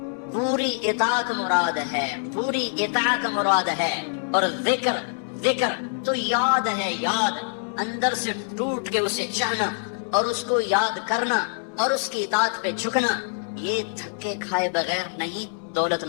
پوری اطاعت مراد ہے, پوری اطاعت مراد ہے. اور ذکر ذکر تو یاد ہے, یاد اندر سے ٹوٹ کے اسے چاہنا اور اس کو یاد کرنا اور اس کی اطاعت پہ جھکنا. یہ دھکے کھائے بغیر نہیں دولت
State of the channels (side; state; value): right; silent; 62 dB below the other